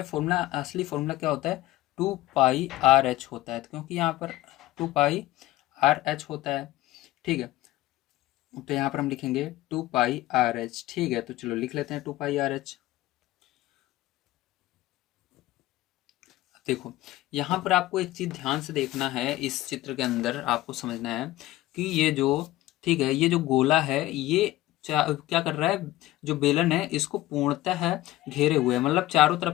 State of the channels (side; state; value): right; quieter; 16.5 dB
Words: फॉर्मूला, असली फॉर्मूला क्या होता है, 2πRh होता है, क्योंकि यहाँ पर 2πRh होता है। ठीक है, तो यहाँ पर हम लिखेंगे 2πRh। ठीक है, तो चलो लिख लेते हैं 2πRh। देखो यहाँ पर आपको एक चीज ध्यान से देखना है, इस चित्र के अंदर आपको समझना है कि ये जो, ठीक है, ये जो गोला है ये क्या कर रहा है, जो बेलन है इसको पूर्णतः है घेरे हुए है, मतलब चारों